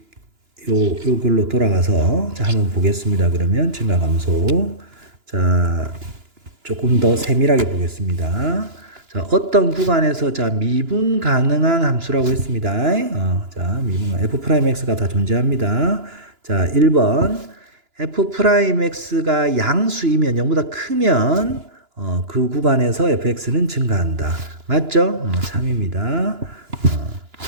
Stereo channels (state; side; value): late; left; 2.9 ms